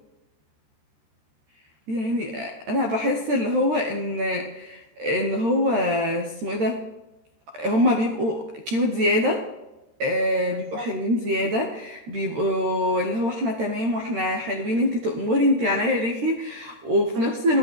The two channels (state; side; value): late; left; 13 ms